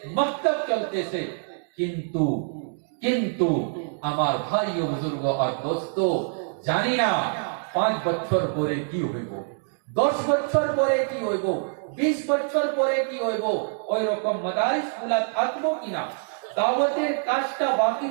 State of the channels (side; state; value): left; silent; digital silence